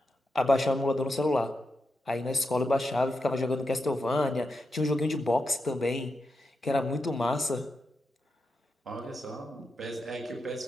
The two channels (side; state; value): both; normal; correlation 0.87